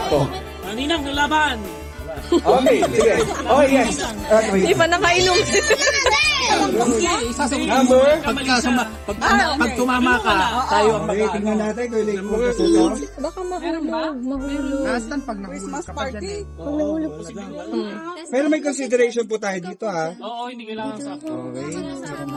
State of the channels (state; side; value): identical; both; correlation 1.00